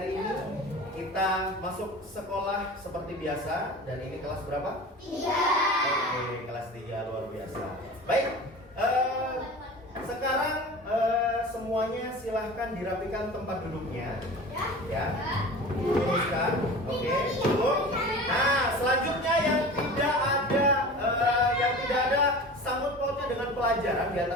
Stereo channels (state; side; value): normal; both; correlation 0.36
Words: ini kita masuk sekolah seperti biasa. Dan ini kelas berapa? 3. Oke, kelas 3 luar biasa. Baik, sekarang semuanya silahkan dirapikan tempat duduknya. Ya, luruskan. Oke, duduk. Nah, selanjutnya yang tidak ada sangkut pautnya dengan pelajaran di